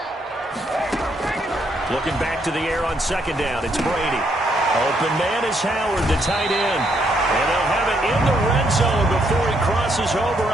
Looking back to the air on second down, it's Brady. Open man is Howard, the tight end. And they'll have it in the red zone before he crosses over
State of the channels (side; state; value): both; normal; correlation 0.74